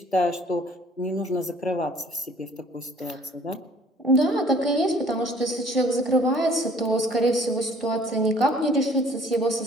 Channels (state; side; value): normal; both; correlation 0.55